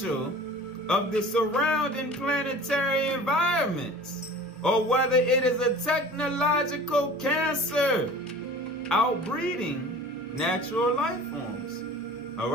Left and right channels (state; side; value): normal; both; correlation 0.42